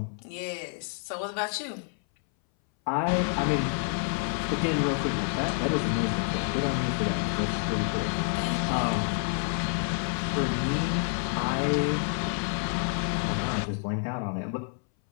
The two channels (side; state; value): right; silent; 59 dB below the other